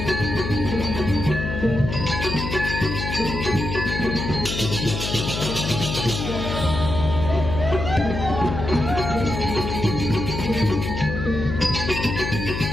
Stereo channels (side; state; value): left; noise; hum, 4 dB below the sound